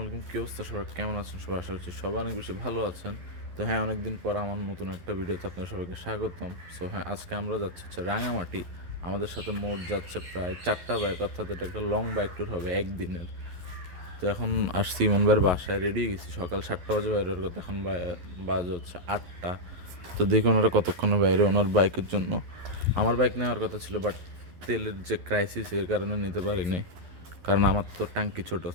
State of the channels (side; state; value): left; late; 11 ms